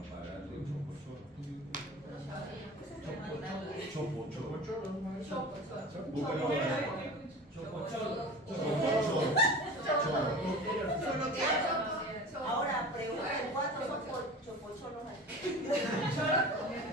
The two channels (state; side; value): normal; both; correlation 0.36